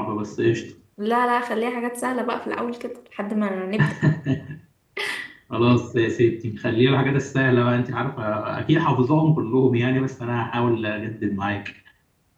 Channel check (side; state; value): both; identical; correlation 1.00